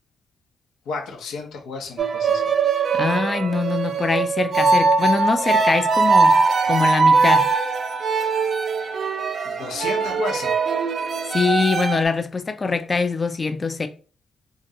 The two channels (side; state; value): both; normal; correlation 0.79